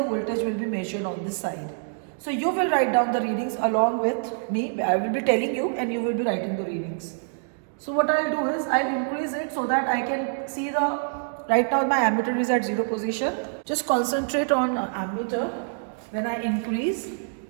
voltage will be measured on this side. So you will write down the readings along with me. I will be telling you and you will be writing the readings. So what I'll do is, I'll increase it so that I can see the, right now my ammeter is at 0 position. Just concentrate on ammeter when I increase,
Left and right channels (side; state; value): left; silent; digital silence